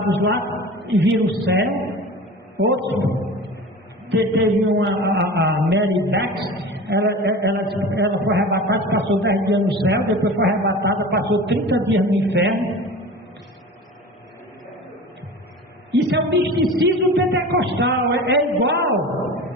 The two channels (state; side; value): normal; both; correlation 0.35